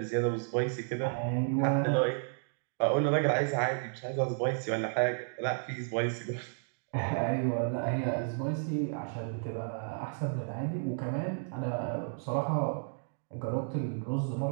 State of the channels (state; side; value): silent; left; digital silence